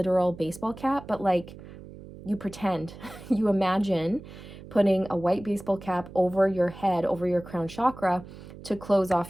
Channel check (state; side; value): noise; right; hum, 16 dB below the sound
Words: baseball cap, but like you pretend, you imagine putting a white baseball cap over your head, over your crown chakra to close